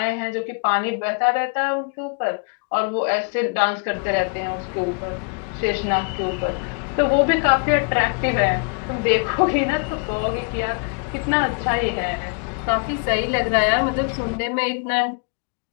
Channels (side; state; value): right; quieter; 38.7 dB